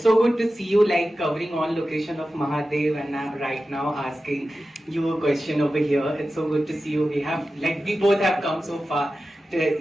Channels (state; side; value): normal; both; correlation 0.94